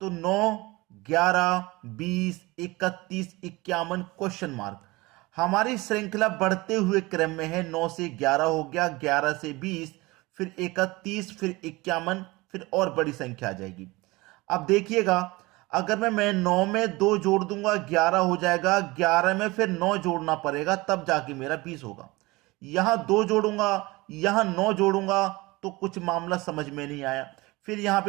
तो 9, 11, 20, 31, 51 क्वेश्चन मार्क। हमारी श्रृंखला बढ़ते हुए क्रम में है। 9 से 11 हो गया, 11 से 20, फिर 31, फिर 51, फिर और बड़ी संख्या आ जाएगी। अब देखिएगा, अगर मैं 9 में 2 जोड़ दूंगा 11 हो जाएगा, 11 में फिर 9 जोड़ना पड़ेगा तब जाके मेरा 20 होगा। यहां 2 जोड़ूंगा, यहां 9 जोड़ूंगा तो कुछ मामला समझ में नहीं आया। फिर यहां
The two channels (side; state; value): left; quieter; 22.1 dB